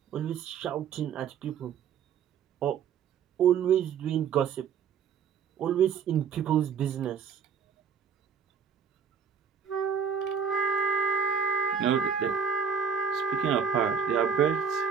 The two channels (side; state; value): left; quieter; 6.9 dB